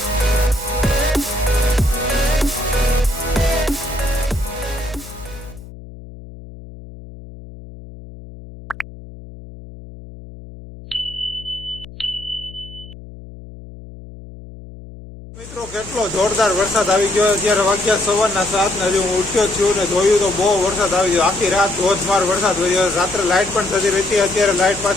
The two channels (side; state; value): left; noise; hum, 16 dB below the sound